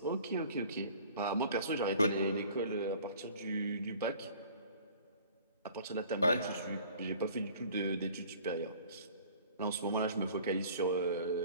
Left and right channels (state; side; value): inverted; both; correlation -0.49